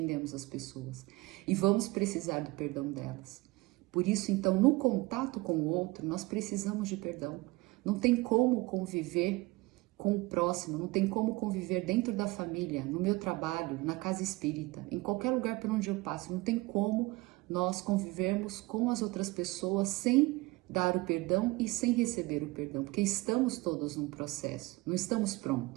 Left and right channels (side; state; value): left; quieter; 22.1 dB